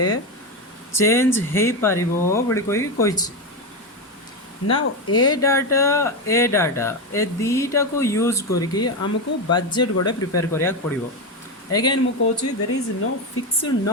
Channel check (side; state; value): both; normal; correlation 0.13